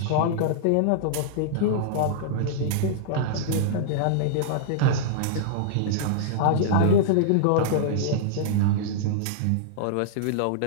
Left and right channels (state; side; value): different; both; correlation -0.02